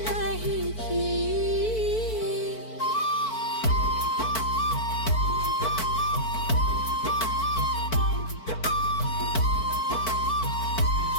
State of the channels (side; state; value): right; late; 4.5 ms